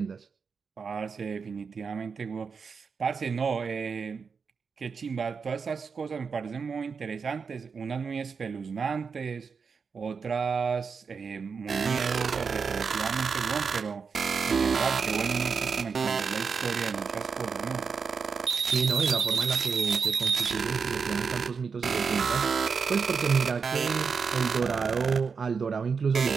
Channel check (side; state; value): left; quieter; 5.5 dB